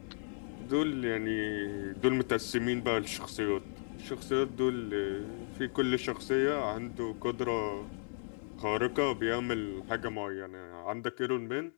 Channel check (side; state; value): right; silent; digital silence